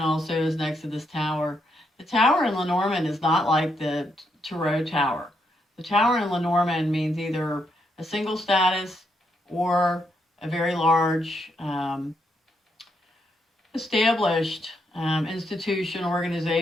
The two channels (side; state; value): both; normal; correlation 0.78